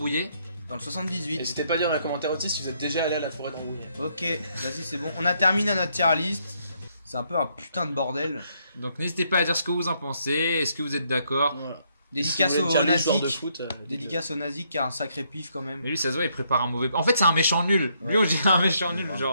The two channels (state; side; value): inverted; both; correlation -0.73